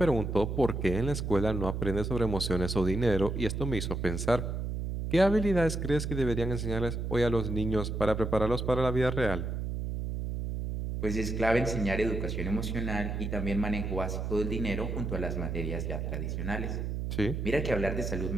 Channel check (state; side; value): noise; right; hum, 3 dB below the sound